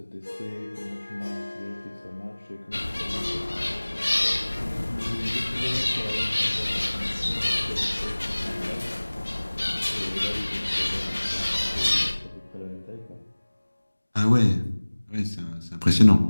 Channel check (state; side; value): inverted; both; correlation -1.00